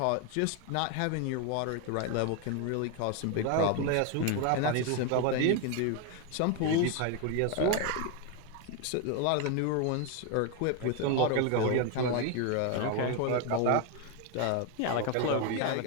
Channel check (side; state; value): both; different; correlation 0.01